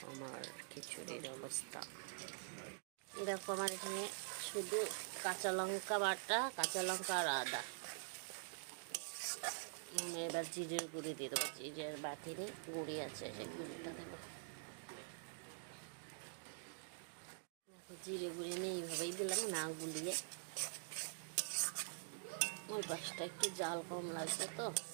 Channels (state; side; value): silent; left; digital silence